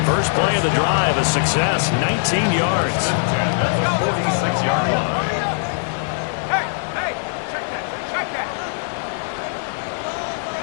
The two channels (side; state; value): right; silent; 65 dB below the other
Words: First play of the drive, a success, 19 yards. 46-yard line.